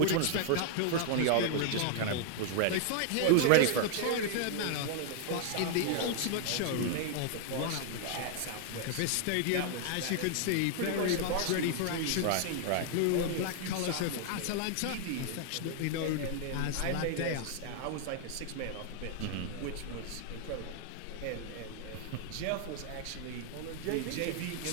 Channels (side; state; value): both; different; correlation 0.00